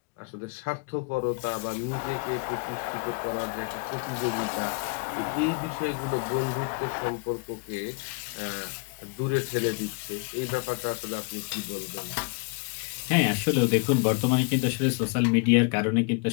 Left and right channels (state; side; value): quieter; right; 32.2 dB